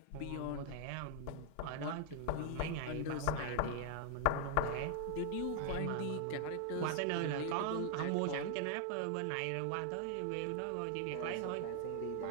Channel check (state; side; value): different; both; correlation 0.00